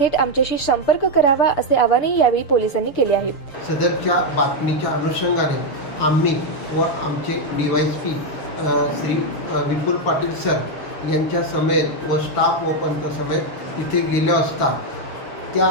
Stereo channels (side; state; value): right; late; 6.8 ms